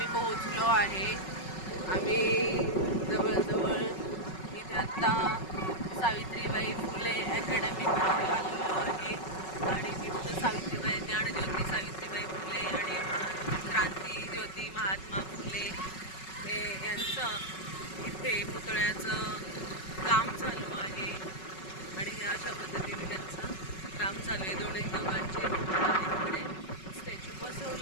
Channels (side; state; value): right; late; 5.4 ms